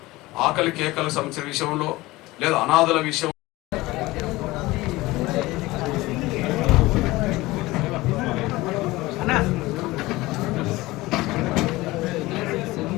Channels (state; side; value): quieter; right; 19.7 dB